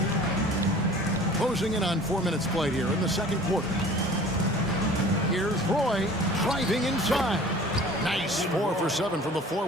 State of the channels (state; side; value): normal; both; correlation 0.46